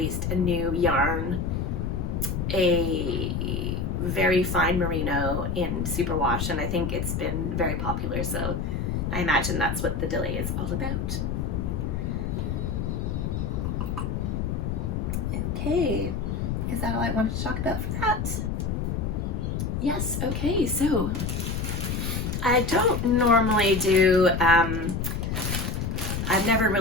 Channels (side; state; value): left; noise; rumble, 1 dB below the sound